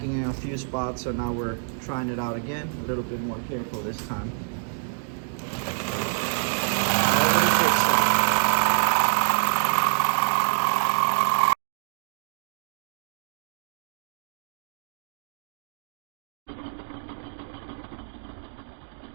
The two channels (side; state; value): left; silent; digital silence